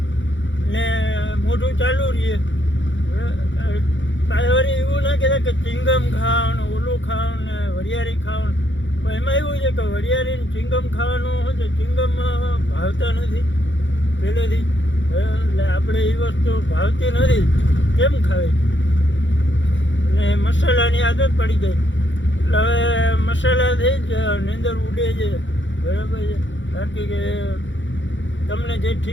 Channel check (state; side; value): late; right; 0.55 ms